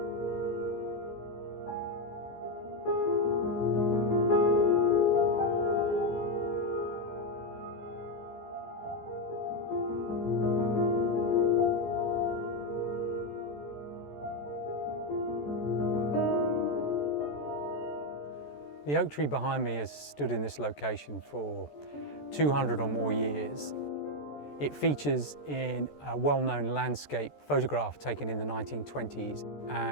The oak tree behind me has stood in this location for 200 or more years. It features in a well-known landscape photograph taken in the 1920s,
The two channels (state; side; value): late; right; 14 ms